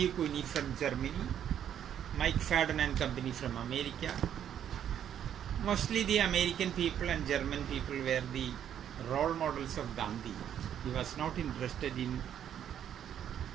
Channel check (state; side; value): quieter; left; 9.7 dB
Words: Cuny from Germany, Mike Fadden and company from America. Mostly the American people and German people were the role models of Gandhi. He was not interested in